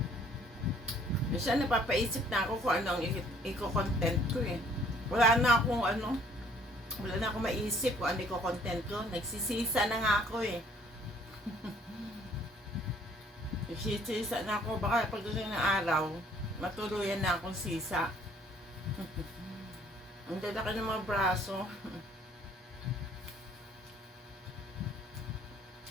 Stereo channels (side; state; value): both; normal; correlation 0.59